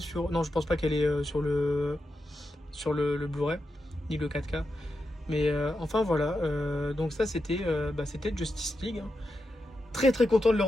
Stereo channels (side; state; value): both; normal; correlation 0.87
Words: sur... Non, je pense pas qu'elle est sur le Blu-ray, ni le 4K. Mais enfin voilà, donc ça c'était Justice League, hein. Très très content de le